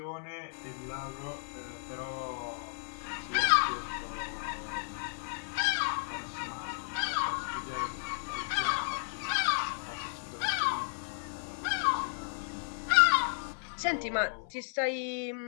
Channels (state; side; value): silent; right; 55 dB below the other